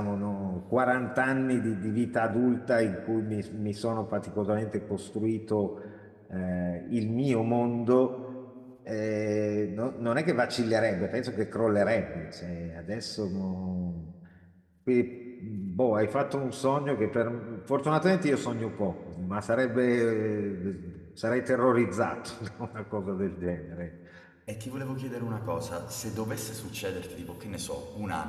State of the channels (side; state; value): both; identical; correlation 1.00